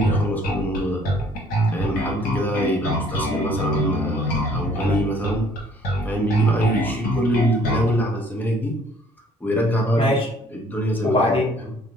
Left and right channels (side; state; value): both; normal; correlation 0.58